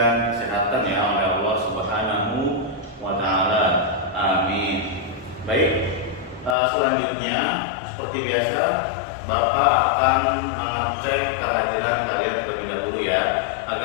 kesehatan ya oleh Allah Subhanahu wa taala. Amin. Baik. Selanjutnya seperti biasa Bapak akan mengecek kehadiran kalian terlebih dahulu ya,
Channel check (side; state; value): right; drops out; at 6.6 s